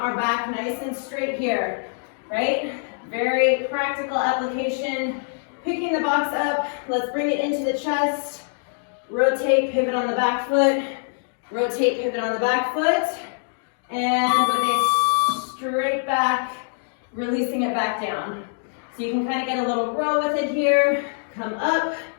back nice and straight here, right? Very practical application. Picking the box up, let's bring it into the chest. Rotate, pivot on the back foot. Rotate, pivot on the back foot. And with a straight back, releasing it back down. So you can kind of get a little row with it here. Come up,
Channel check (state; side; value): silent; right; digital silence